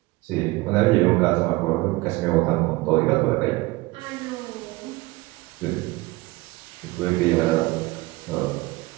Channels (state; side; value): quieter; left; 21.4 dB